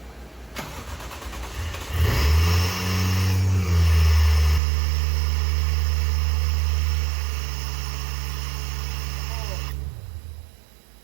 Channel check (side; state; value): left; drops out; at 4.6 s